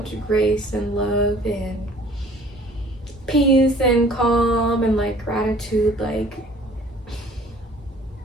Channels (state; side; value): normal; both; correlation 0.52